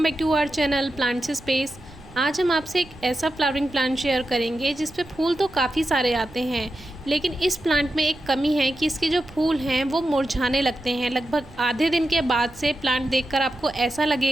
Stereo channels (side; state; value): right; noise; rumble, 22 dB below the sound